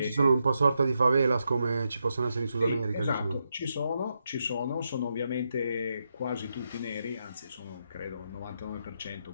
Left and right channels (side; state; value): both; inverted; correlation -0.83